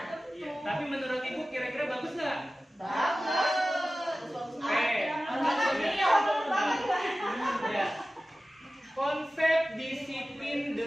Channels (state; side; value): normal; both; correlation 0.96